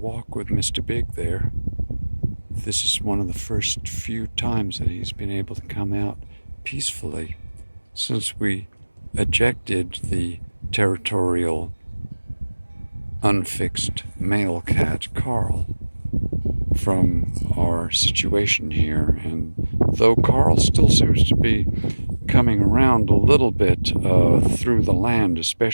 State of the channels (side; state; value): both; inverted; correlation -1.00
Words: with Mr. Big there. This is one of the first few times that he's been able to come out peacefully since we ejected the territorial, unfixed male cat, Carl, from our situation here. And though Carl still seems to be coming around a little bit through the land,